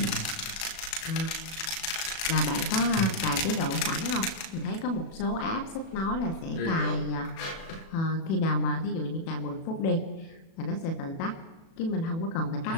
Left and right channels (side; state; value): right; late; 36 ms